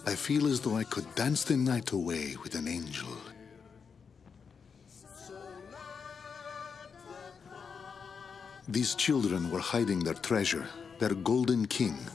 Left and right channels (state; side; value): quieter; right; 6.0 dB